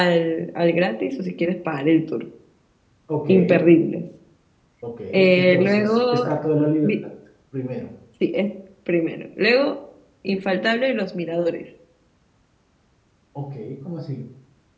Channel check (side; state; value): both; identical; correlation 1.00